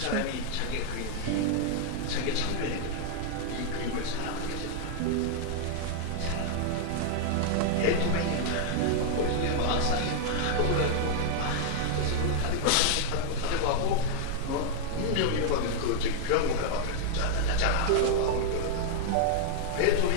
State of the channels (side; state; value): both; different; correlation 0.00